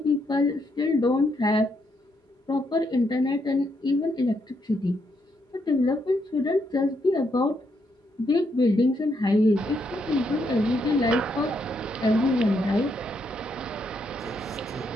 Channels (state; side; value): normal; both; correlation 0.77